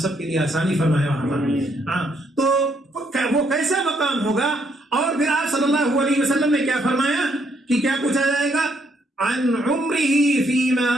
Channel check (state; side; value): normal; both; correlation 0.72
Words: کے لیے آسانی فرمائے وہاں پر۔ ہاں تو وہ کیسا مقام ہوگا، اور پھر آپ صلی اللہ علیہ وسلم نے کیا فرمایا کہ کیا پوچھا جائے گا؟ عن عمرہ فیما